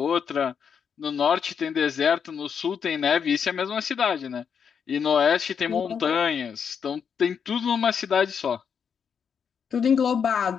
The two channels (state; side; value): quieter; right; 7.0 dB